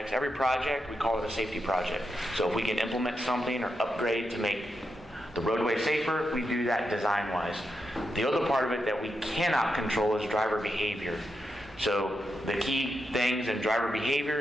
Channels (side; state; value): both; normal; correlation 0.86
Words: every project we call it a safety project. So if we can implement something or upgrade to make the roadway safer, we do that design-wise. The other part of it that we cannot control is driver behavior. So the key things in driver